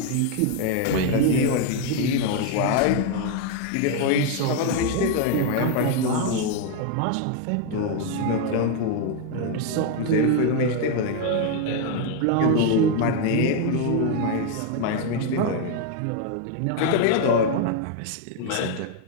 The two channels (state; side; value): different; both; correlation 0.01